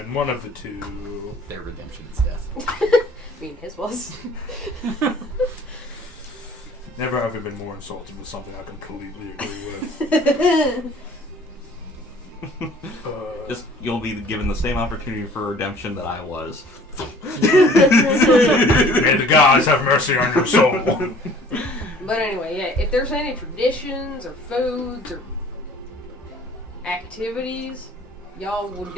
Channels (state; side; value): normal; both; correlation 0.51